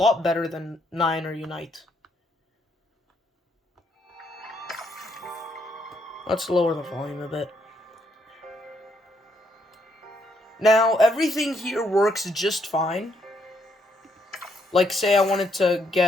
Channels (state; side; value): normal; both; correlation 0.73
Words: better than 9 or Unite. Let's lower the volume a bit. Now, everything here works just fine. Like, say I wanted to